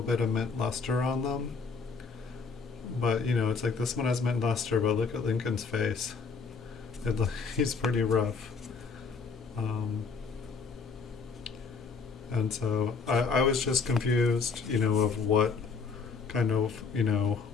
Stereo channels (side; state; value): right; quieter; 5.0 dB